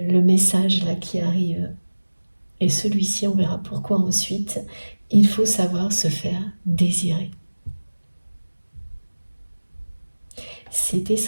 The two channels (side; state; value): both; inverted; correlation -1.00